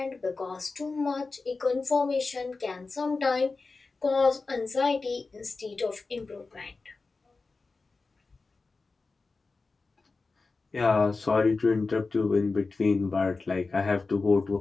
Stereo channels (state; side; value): quieter; right; 3.9 dB